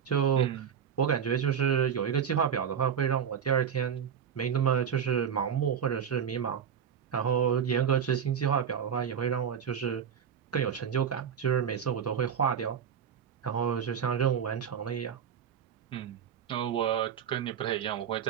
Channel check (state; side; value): quieter; left; 8.0 dB